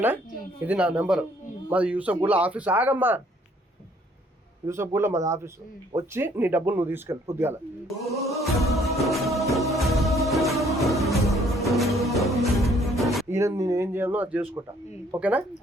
ఇది నా నెంబర్. మాది యూసఫ్గూడలో ఆఫీస్. ఆగమ్మా, యూసఫ్గూడలో మాది ఆఫీస్. వచ్చి నీ డబ్బులు నువ్వు తీసుకెళ్ళి పొద్దుగాల. ఈయన నేను ఏం చేయాలో అది చేసుకుంటా. ఓకేనా?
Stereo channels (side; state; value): both; normal; correlation 0.62